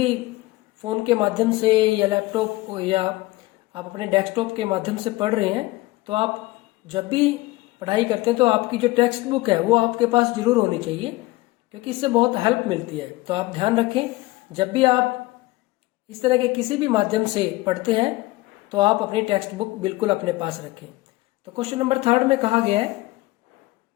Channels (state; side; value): quieter; right; 20.0 dB